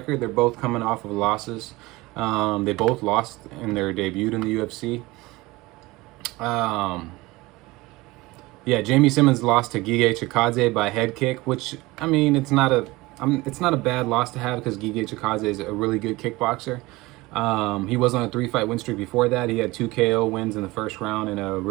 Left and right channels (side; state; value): left; quieter; 21.0 dB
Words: They're both coming off of losses. They both lost in their debut in the UFC. Yeah, Jamie Simmons lost to Gige Chikadze by head kick, which I mean, it's not a bad loss to have because Gige Chikadze is a really good kickboxer. He was on a 3-fight win streak before that. He had 2 KO wins in the first round and a